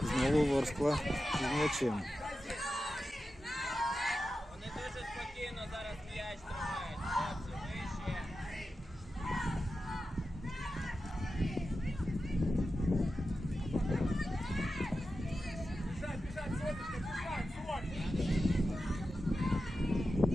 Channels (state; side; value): normal; both; correlation 0.91